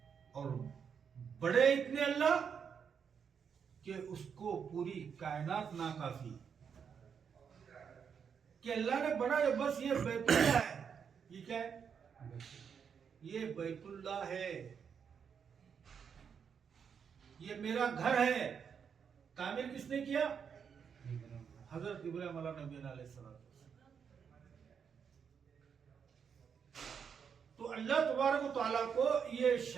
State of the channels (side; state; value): left; quieter; 7.0 dB